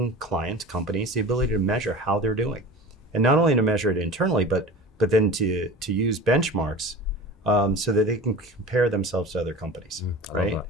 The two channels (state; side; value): normal; both; correlation 0.36